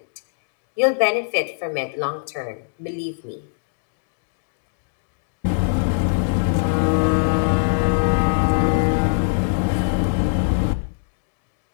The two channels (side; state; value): right; silent; digital silence